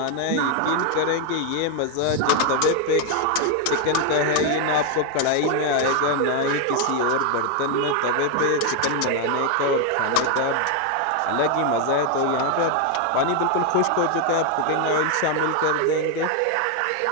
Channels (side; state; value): both; different; correlation 0.01